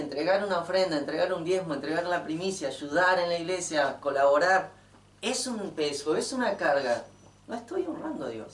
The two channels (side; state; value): both; identical; correlation 1.00